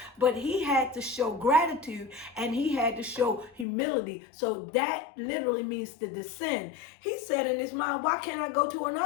But he had to show gratitude and he had to show humility. So that literally means to descend. He said in his mind, why can't I go to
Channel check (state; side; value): drops out; right; at 3.7 s